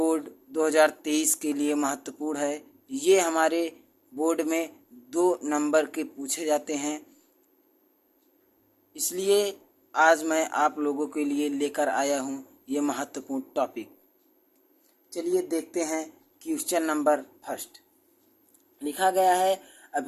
2023 के लिए महत्वपूर्ण है। ये हमारे बोर्ड में 2 नंबर के पूछे जाते हैं, इसलिए आज मैं आप लोगों के लिए लेकर आया हूँ ये महत्वपूर्ण टॉपिक। चलिए देखते हैं क्वेश्चन नंबर फर्स्ट। लिखा गया है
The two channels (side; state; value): both; identical; correlation 1.00